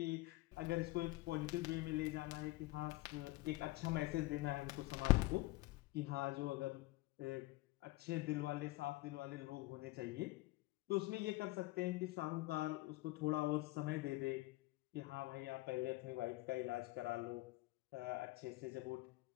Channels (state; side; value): quieter; right; 20.1 dB